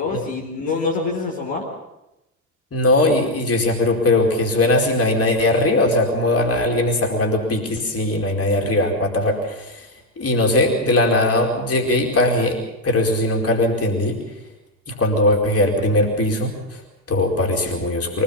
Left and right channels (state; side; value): normal; both; correlation 0.03